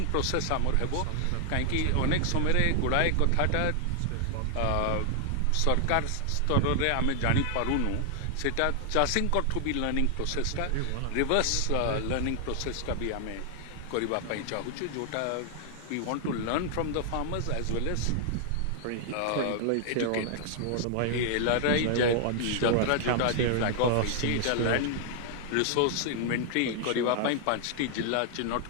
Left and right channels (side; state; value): both; different; correlation 0.00